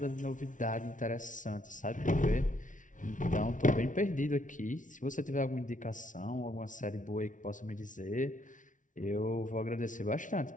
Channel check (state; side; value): late; right; 0.37 ms